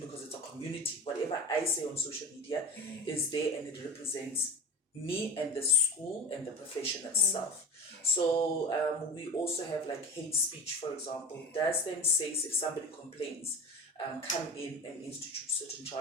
because it's a community, whatever I say on social media is there and it represents me and the school and the profession itself. So we also have like hate speech, for example. Does then SACE, if somebody complains, come in and institute certain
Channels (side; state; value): both; normal; correlation 0.31